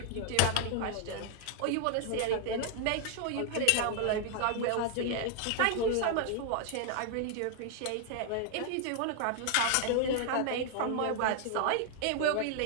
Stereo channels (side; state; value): both; different; correlation 0.00